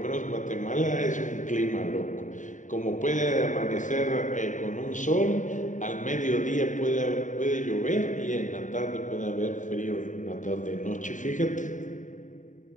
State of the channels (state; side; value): late; right; 0.36 ms